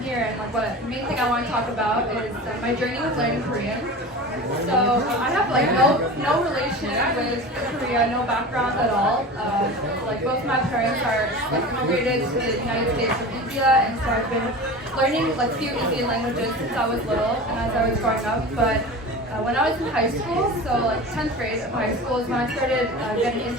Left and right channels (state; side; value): normal; both; correlation 0.33